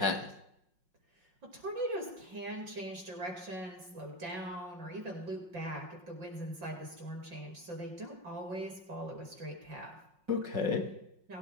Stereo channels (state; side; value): late; left; 5.5 ms